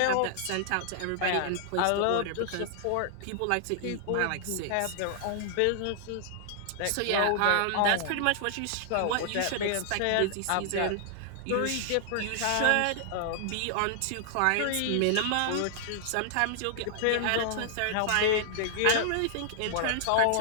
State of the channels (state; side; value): different; both; correlation -0.01